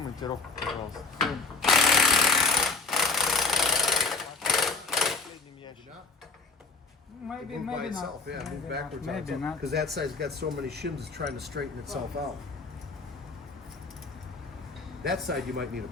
пожалуйста. Maybe, Move by maybe itself, not. yeah, move Maybe backwards not. on Maybe itself. not. Because that side's got so many shims, it's trying to straighten itself out. That side you might need a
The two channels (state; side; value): quieter; right; 3.9 dB